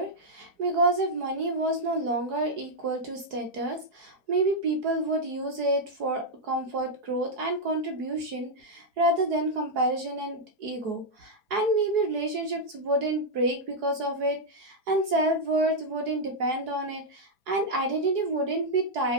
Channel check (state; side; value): late; left; 4.7 ms